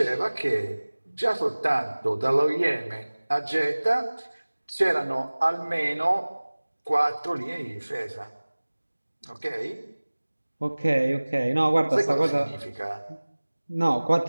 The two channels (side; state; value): both; inverted; correlation -1.00